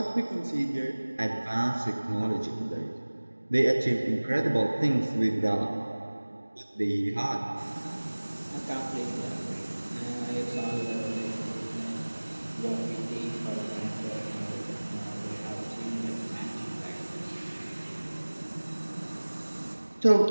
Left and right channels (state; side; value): inverted; both; correlation -1.00